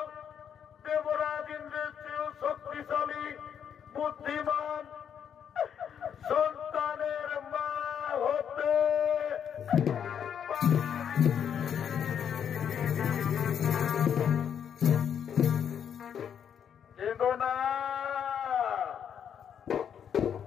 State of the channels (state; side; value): quieter; right; 8.3 dB